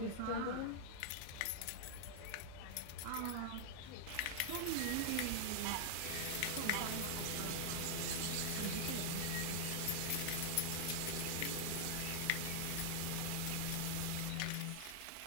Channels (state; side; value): different; both; correlation -0.01